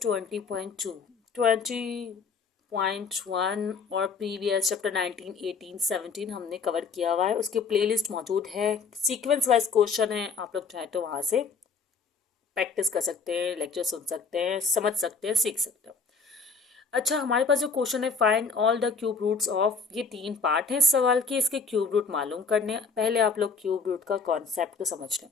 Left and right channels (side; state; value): right; quieter; 5.0 dB